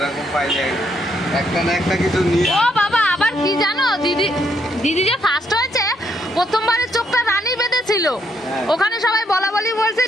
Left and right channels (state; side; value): normal; both; correlation 0.74